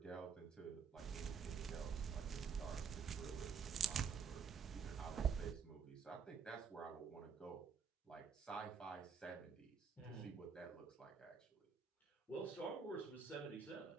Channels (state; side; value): quieter; left; 6.1 dB